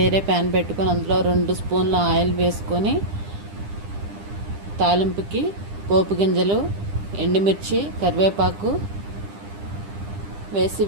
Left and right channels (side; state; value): left; late; 10 ms